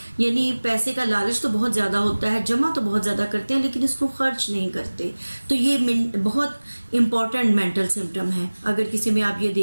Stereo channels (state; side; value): inverted; both; correlation -1.00